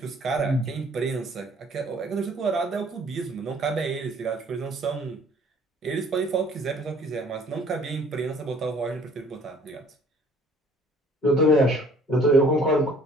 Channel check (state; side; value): normal; both; correlation 0.56